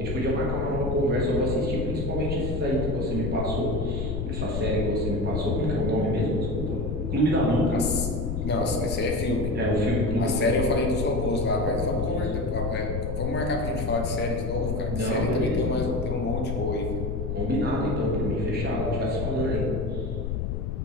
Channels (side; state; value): left; noise; rumble, 2 dB below the sound